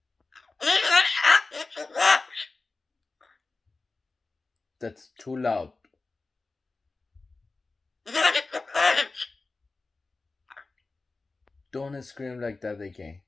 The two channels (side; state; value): right; quieter; 3.6 dB